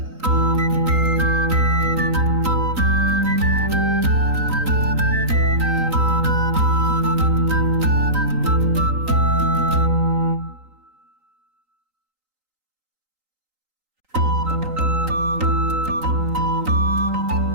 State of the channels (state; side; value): late; left; 3.9 ms